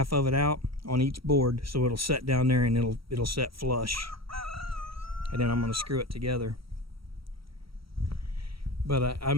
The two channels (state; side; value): late; left; 0.75 ms